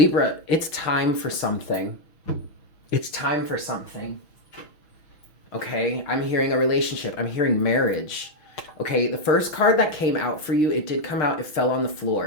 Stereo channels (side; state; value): right; late; 6.1 ms